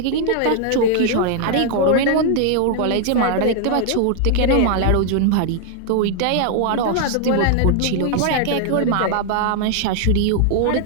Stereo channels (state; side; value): different; both; correlation 0.00